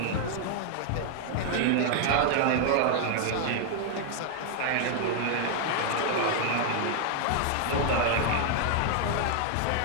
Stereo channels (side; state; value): both; different; correlation 0.00